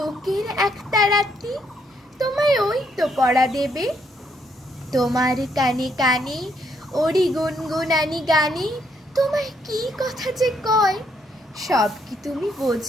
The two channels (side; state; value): both; normal; correlation 0.73